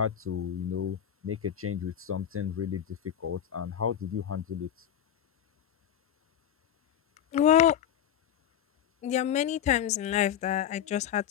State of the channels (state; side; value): quieter; right; 9.9 dB